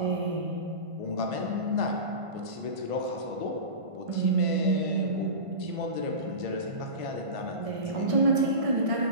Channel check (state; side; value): late; left; 1.5 ms